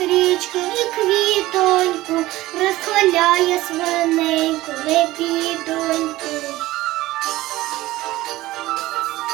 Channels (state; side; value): quieter; left; 17.4 dB